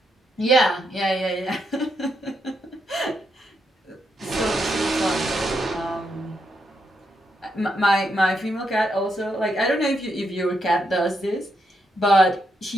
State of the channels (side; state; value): both; normal; correlation 0.81